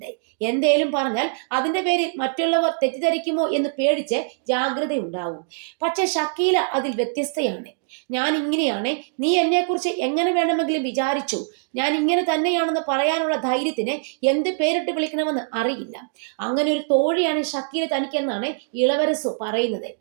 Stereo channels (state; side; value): silent; left; digital silence